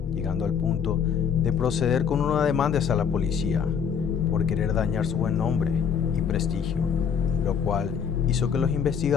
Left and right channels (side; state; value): right; quieter; 7.2 dB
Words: llegando al punto de proceder con una demanda hacia la policía por querer dañar su buen nombre y prestigio, lo cual hizo que los